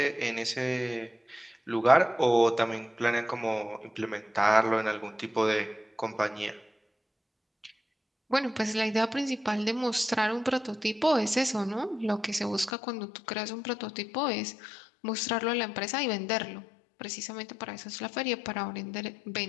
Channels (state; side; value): drops out; right; at 12.7 s